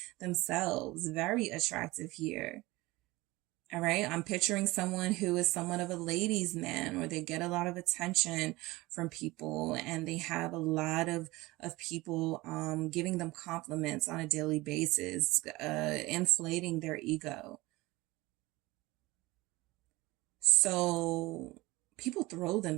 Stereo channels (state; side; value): quieter; left; 20.6 dB